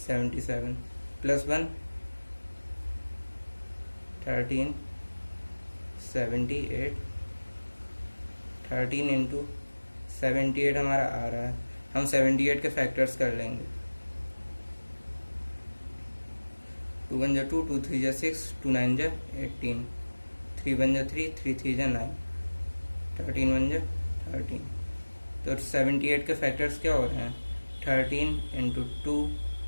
77 plus 1 13 78। 13 into 78 हमारा आ रहा है, हम 78 के फैक्टर्स कर लेंगे। 2 1 2, 2 3 6, 2 9 18, 3 1 3, 3 3 9, 13 1 13। तो 78 के फैक्टर्स क्या हो रहे हैं? 13 into 2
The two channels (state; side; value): inverted; both; correlation -1.00